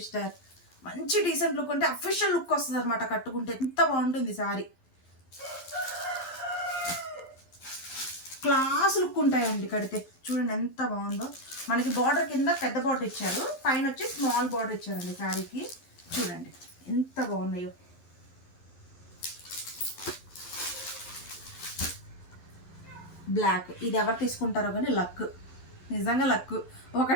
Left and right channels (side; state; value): right; late; 11 ms